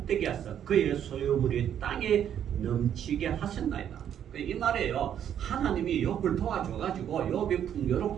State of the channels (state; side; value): quieter; left; 9.6 dB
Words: 하사 그의 소유물이 땅에 넘치게 하셨나이다. 이 말이에요. 하나님이 욥을 도와줘가지고 욥이